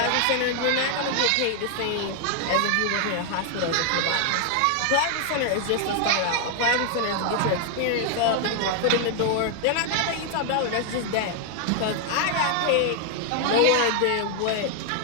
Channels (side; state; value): both; different; correlation 0.00